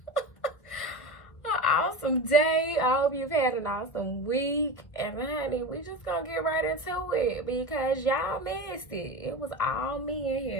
an awesome day. I hope you've had an awesome week. And honey, we just gonna get right into it because y'all missed it. It was all me in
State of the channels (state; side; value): late; right; 1.4 ms